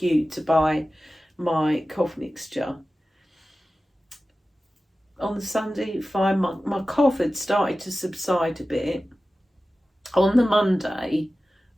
to buy my cough mixture, on the Sunday, fine. My cough had started to subside a bit. On the Monday,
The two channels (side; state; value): both; normal; correlation 0.95